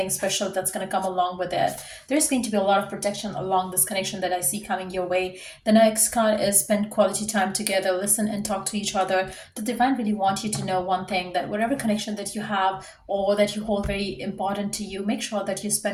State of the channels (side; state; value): both; identical; correlation 1.00